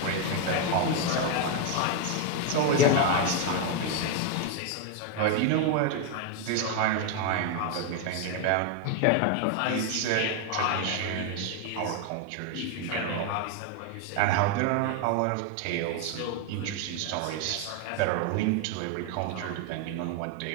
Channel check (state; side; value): different; both; correlation 0.01